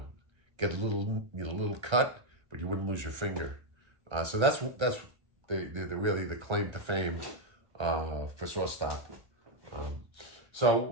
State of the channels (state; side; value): late; left; 1.3 ms